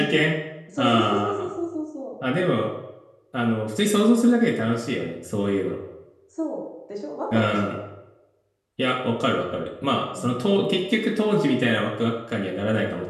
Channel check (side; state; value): both; identical; correlation 1.00